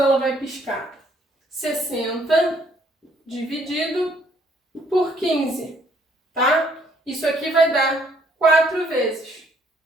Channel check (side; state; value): both; normal; correlation 0.66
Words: vai piscar? 60 dividido por 15, tá? Isso aqui vai dar 4 vezes,